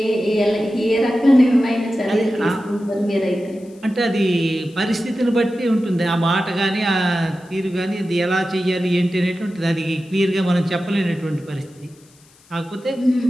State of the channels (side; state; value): left; noise; hiss, 29 dB below the sound